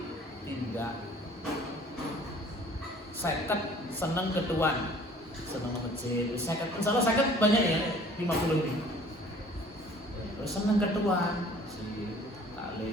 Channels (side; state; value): both; normal; correlation 0.52